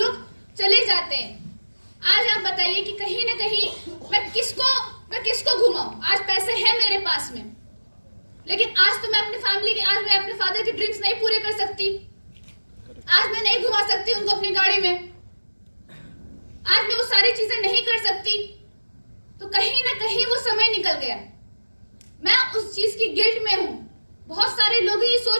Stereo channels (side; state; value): both; inverted; correlation -1.00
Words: चले जाते हैं, आज आप बताइए कि कहीं ना कहीं मैं किसको घुमाऊं? आज पैसे हैं मेरे पास में, लेकिन आज तो मैं अपनी फैमिली के, आज मैं अपने फादर के ड्रीम्स नहीं पूरे कर सकती, आज मैं नहीं घुमा सकती उनको अपनी गाड़ी में, आज मैं वो सारी चीजें नहीं कर सकती। तो कहीं ना कहीं वो समय निकल गया, मैं उस चीज की गिल्ट में हूं। बहुत सारे लोग ये